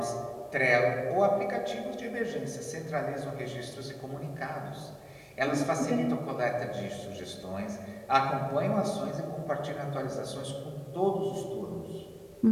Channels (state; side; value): identical; both; correlation 1.00